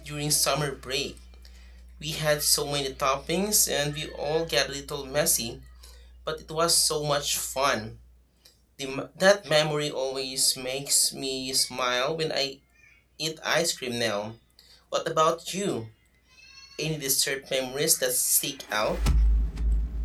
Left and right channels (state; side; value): identical; both; correlation 1.00